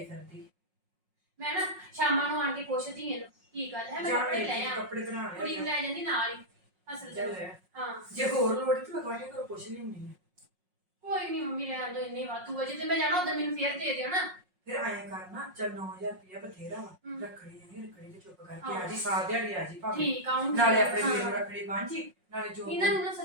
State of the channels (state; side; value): late; left; 5.5 ms